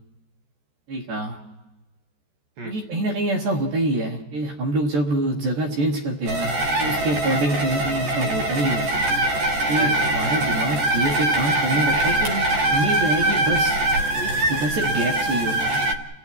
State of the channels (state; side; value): late; left; 14 ms